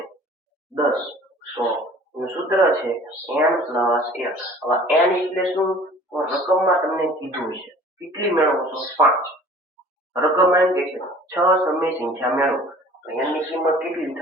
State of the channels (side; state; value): both; normal; correlation 0.48